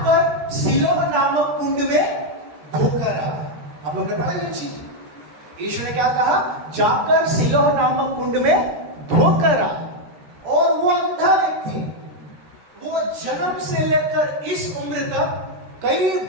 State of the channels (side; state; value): left; late; 13 ms